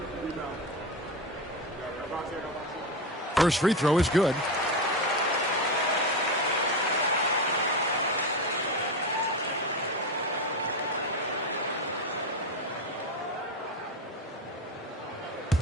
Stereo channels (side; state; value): both; normal; correlation 0.17